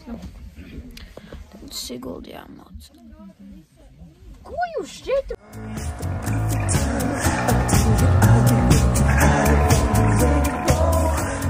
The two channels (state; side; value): identical; both; correlation 1.00